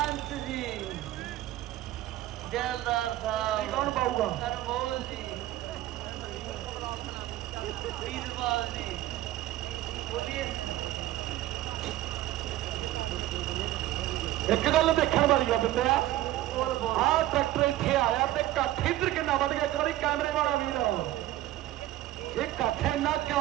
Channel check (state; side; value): quieter; left; 15.0 dB